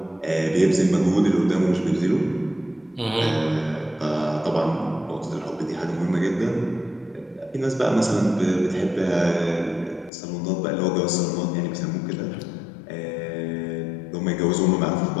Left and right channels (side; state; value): right; drops out; at 10.1 s